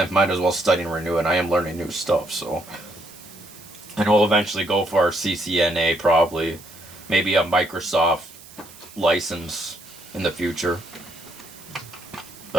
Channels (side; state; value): right; noise; hiss, 20 dB below the sound